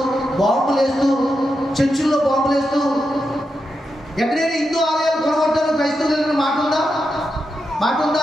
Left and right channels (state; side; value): normal; both; correlation 0.87